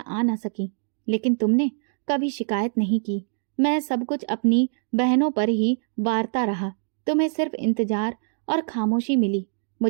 आ ना सकी, लेकिन तुमने कभी शिकायत नहीं की। मैं सब कुछ अपनी बहनों पर ही वारता रहा। तुम्हें सिर्फ इंतजार और खामोशी मिली।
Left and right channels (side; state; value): left; silent; digital silence